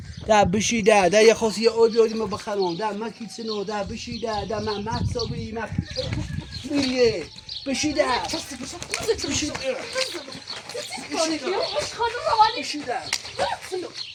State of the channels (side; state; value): both; identical; correlation 1.00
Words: ده بشی ده یه خاصی یه آبی آدی ما بخرم ده مکی سنو ده بشی ده من مکسابی میریه بشی ده بشی ده بشی ده